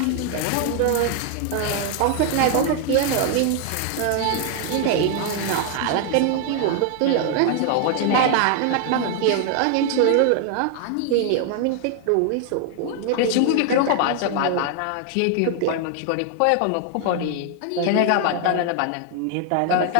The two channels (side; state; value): both; different; correlation 0.00